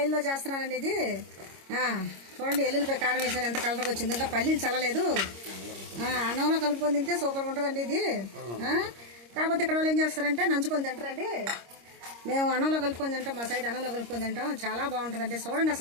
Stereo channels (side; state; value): left; late; 26 ms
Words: చేస్తున్నానండి ఇది. చూడండి ఎల్లుల్లిపాయ కారం వేసాను, ఎంత కలర్గా వచ్చింది. ఇంకా పల్లీలు చల్లలేదు. అన్నంలో కలుపుకొని తింటే సూపర్గా ఉంటుందండి ఇది. కాకపోతే ఇక్కడ వాళ్ళు ఏం చేస్తారంటే నంచుకొని తింటారండి. మేము అన్నంలో కలుపుకొని తింటాం, మా సైడ్ అన్నంలో కలుపుకొని తింటాం, చాలా బాగుంటుందండి. చూడండి,